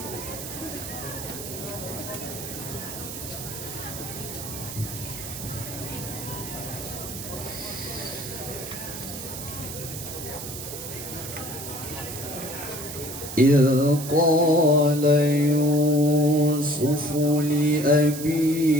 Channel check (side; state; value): right; noise; hiss, 9 dB below the sound